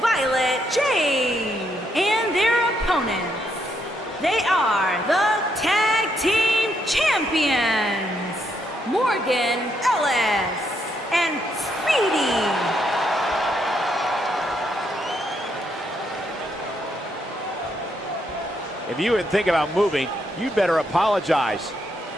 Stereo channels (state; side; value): normal; both; correlation 0.76